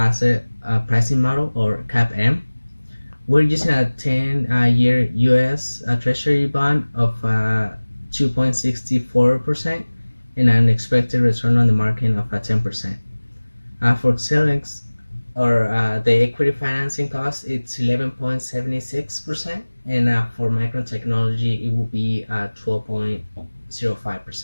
pricing model, or CAPM. We're using a 10-year US Treasury bond of 2.64% and an expected return on the market of 10%. For Xilinx, or the equity financing cost, it's 11.76%, and for Micron Technology, it will be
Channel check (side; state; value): both; inverted; correlation -1.00